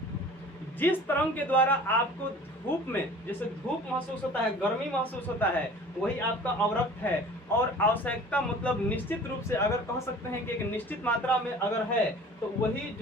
जिस तरंग के द्वारा आपको धूप में जैसे धूप महसूस होता है, गर्मी महसूस होता है, वही आपका अवरक्त है। और आवश्यकता मतलब निश्चित रूप से अगर कह सकते हैं कि एक निश्चित मात्रा में अगर है तो वही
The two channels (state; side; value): normal; both; correlation 0.45